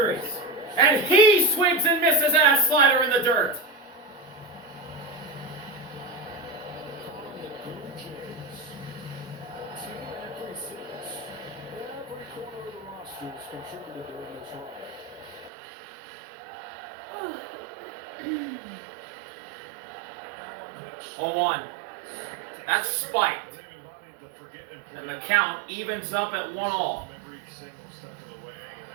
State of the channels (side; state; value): left; drops out; at 15.5 s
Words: And he swings and misses at a slider in the dirt. contributed during this run. 0-1. That's spiked. And the count evens up at 1-1. Every single step of the way